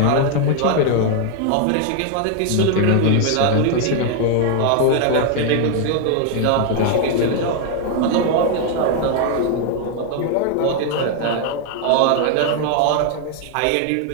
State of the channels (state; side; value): different; both; correlation 0.00